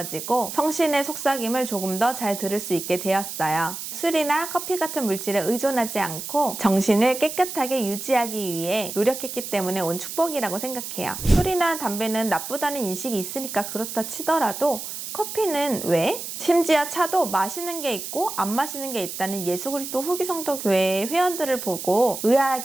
성신의 속삭임을 조금 더 잘 들을 수 있게 되었어요. 술이나 커피 같은 물질에 의존하지 않고 정신을 깨끗하게 유지하기 위해 노력했기 때문에 온 축복이라고 생각해요. 술이나 담배는 나쁘다는 인식이 있으니까 그렇다 치더라도 커피는 왜? 심지어 차도 마시는 게 있고 안 마시는 게 있다는 예수 그리스도 후기 성도 교회의 회원들을 보고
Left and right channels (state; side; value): noise; right; hiss, 8 dB below the sound